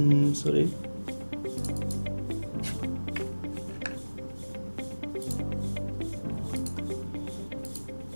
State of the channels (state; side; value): inverted; both; correlation -1.00